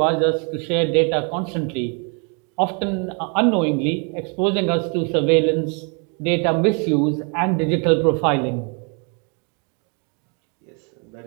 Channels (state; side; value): quieter; left; 36.6 dB